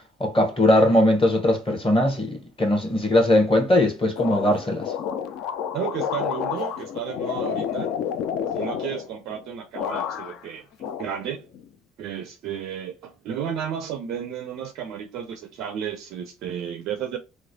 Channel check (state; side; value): normal; both; correlation 0.65